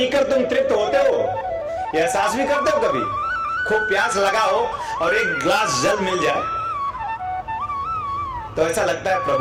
तुम तृप्त होते हो। यह एहसास भी करते हो कभी? खूब प्यास लगा हो और एक ग्लास जल मिल जाए तो ऐसा लगता है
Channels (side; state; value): both; identical; correlation 1.00